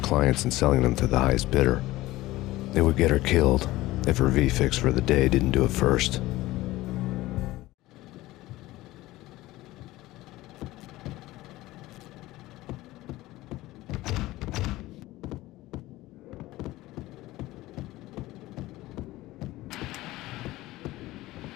and selling them to the highest bidder. They would get her killed if her V-fix for the day didn't do it first.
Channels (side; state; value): right; quieter; 17.7 dB